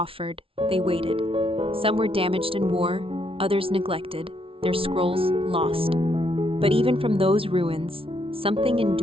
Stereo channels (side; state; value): left; late; 0.26 ms